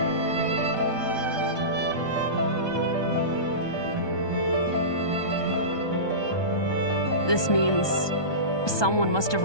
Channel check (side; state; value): right; late; 1.2 ms